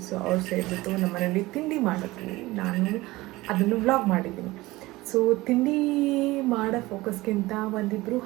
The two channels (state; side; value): quieter; left; 19.7 dB